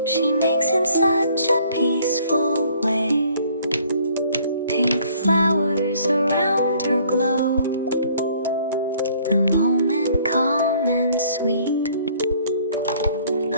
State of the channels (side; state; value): both; inverted; correlation -0.59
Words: she makes in such a peaceful way. Pink flowers around her glow, the moment calm and sweet.